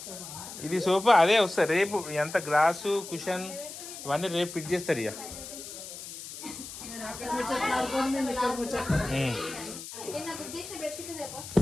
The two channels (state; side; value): noise; left; hiss, 11 dB below the sound